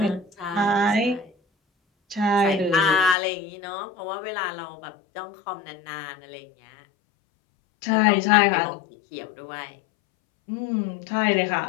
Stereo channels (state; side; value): drops out; right; at 3.2 s